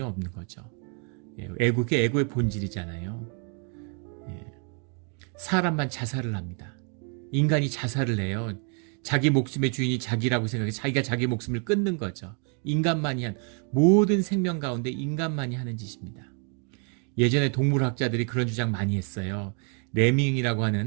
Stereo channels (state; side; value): quieter; left; 39.5 dB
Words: 없는 거죠. 그게 에고의 본질이잖아요. 사람만 자살을 합니다. 인간이 자살을 해요. 자기 목숨의 주인이 자기라고 생각해 자기가 자기 목숨을 끊는 거죠. 인간만이 한 모든 생명 가운데 인간만이 하는 짓입니다. 예전에 동물학자들이 그런 주장 많이 했어요. 레밍이라고